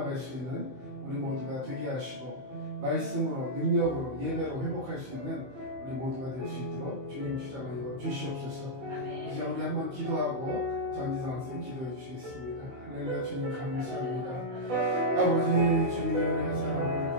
수 있는 우리 모두가 되게 하시고 말씀으로 능력으로 예배로 회복할 수 있는 우리 모두가 될 수 있도록 주님 주장하여 주시옵소서. 이제 우리 한번 기도하고 전지상 선생 기도해 주시겠습니다. 할렐루야. 주님 감사합니다. 아버지 주님의 은혜의 사랑을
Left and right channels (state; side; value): late; left; 15 ms